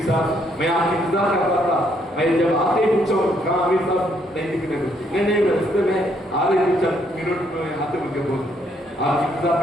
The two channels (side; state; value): both; normal; correlation 0.71